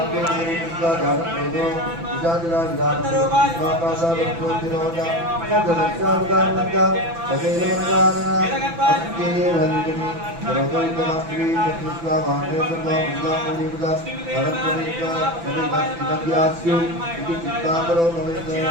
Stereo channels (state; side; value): late; left; 6.0 ms